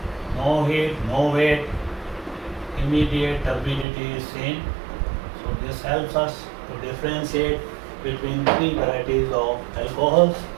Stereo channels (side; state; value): left; drops out; at 3.9 s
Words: No heat, no weight, immediate turbidity is seen. So this helps us to differentiate between 3 varieties of alcohols.